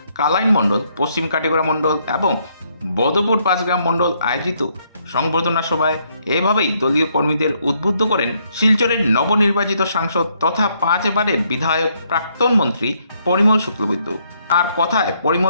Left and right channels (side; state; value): both; inverted; correlation -0.72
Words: কালাইন মণ্ডল, পশ্চিম কাটিগড়া মণ্ডল এবং বদরপুর 5 গ্রাম মণ্ডল আয়োজিত সংবর্ধনা সভায় এভাবেই দলীয় কর্মীদের উদ্বুদ্ধ করেন শিলচরের নবনির্বাচিত সাংসদ তথা 5 বারের বিধায়ক প্রাক্তন মন্ত্রী পরিমল শুক্লবৈদ্য। আর কথায়